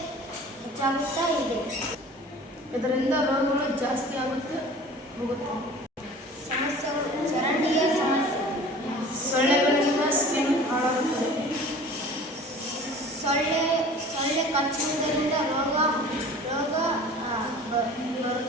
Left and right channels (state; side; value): normal; both; correlation 0.43